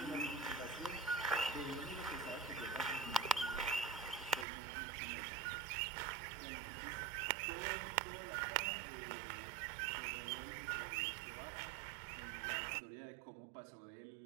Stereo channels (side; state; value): left; drops out; at 4.5 s